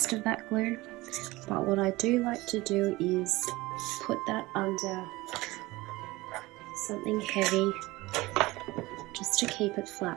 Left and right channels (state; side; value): quieter; left; 20.2 dB